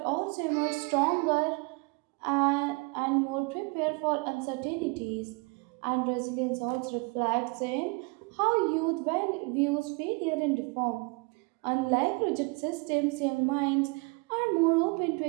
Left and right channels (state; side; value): quieter; left; 30.4 dB